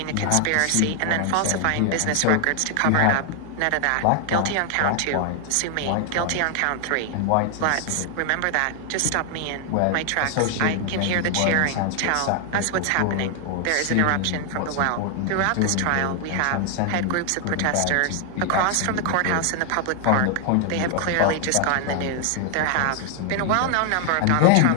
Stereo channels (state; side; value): different; both; correlation 0.00